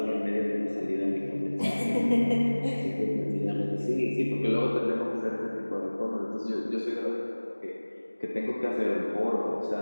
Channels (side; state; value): both; inverted; correlation -1.00